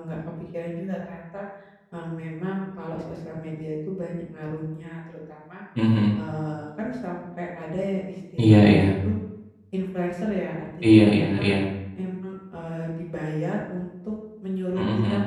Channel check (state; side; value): identical; both; correlation 1.00